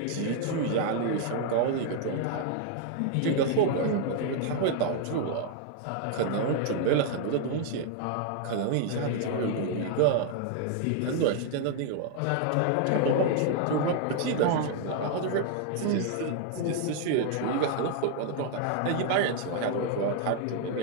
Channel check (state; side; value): different; both; correlation 0.00